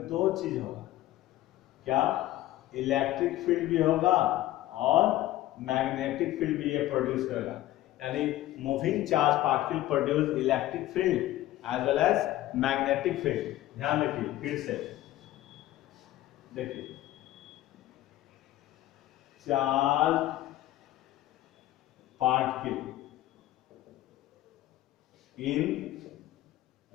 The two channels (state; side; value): quieter; right; 15.0 dB